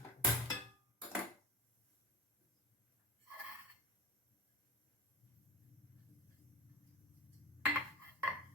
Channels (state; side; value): normal; both; correlation 0.30